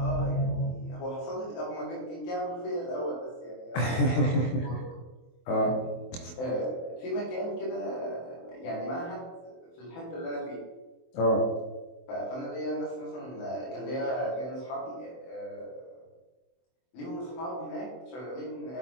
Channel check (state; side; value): late; right; 24 ms